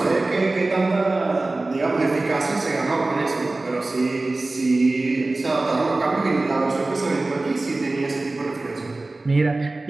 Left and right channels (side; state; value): left; quieter; 3.1 dB